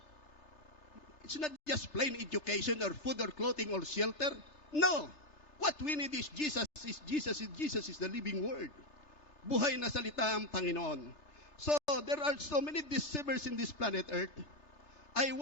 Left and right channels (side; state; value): right; late; 3.3 ms